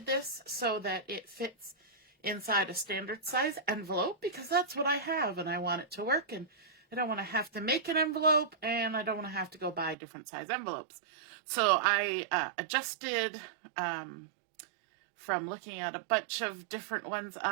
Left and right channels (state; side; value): drops out; left; at 10.0 s